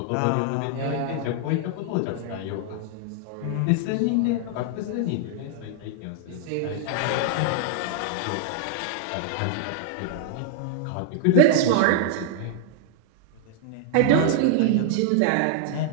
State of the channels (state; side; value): different; both; correlation -0.01